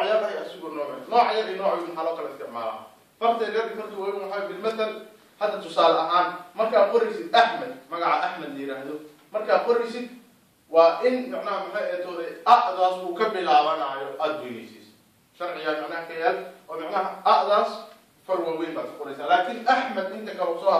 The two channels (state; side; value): identical; both; correlation 1.00